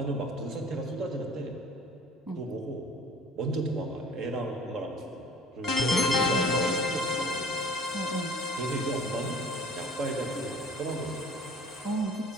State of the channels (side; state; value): both; normal; correlation 0.48